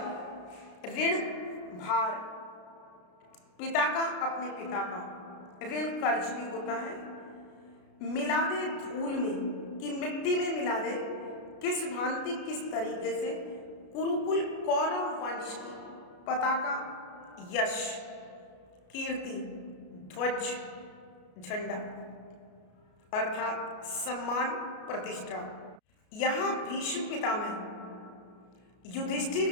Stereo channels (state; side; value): late; right; 33 ms